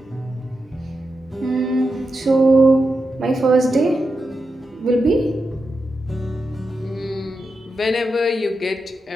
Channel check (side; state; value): both; normal; correlation 0.88